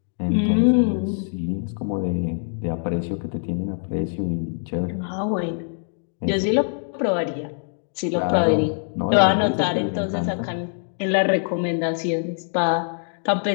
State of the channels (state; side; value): silent; right; 63 dB below the other